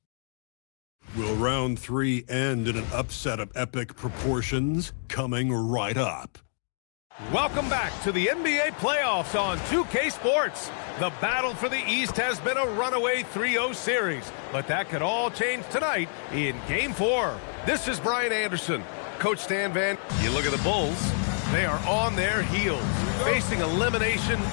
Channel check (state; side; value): silent; right; digital silence